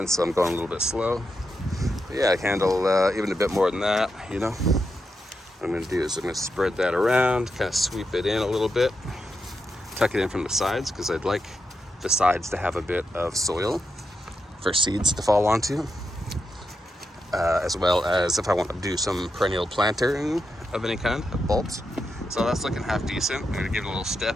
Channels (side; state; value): both; normal; correlation 0.85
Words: so I'm going a little bit slow. But yeah, I can handle even a bit more than that, What I'm going to do is I'm going to spread that around, kind of sweep it in a little bit, tuck it in from the sides, because I'd like the sides to have a bit of soil for seeds to fall onto, as well as if I want to do some perennial planting of any kind, of bulbs. So that's looking half decent. I'm going to give it a little